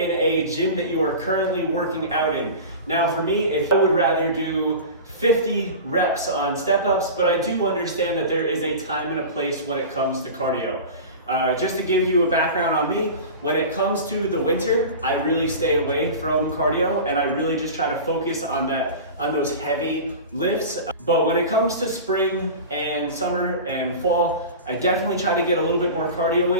a gym that you are currently working out in. Now for me, if I would rather do 50 reps on step-ups, but I do understand that there is a time and a place when it comes to cardio. Just to give you a background on me, when it comes to the winter, I really stay away from cardio and I really just try to focus on those heavy lifts. But when it comes to spring and summer and fall, I definitely try to get a little bit more cardio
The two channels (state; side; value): inverted; both; correlation -0.32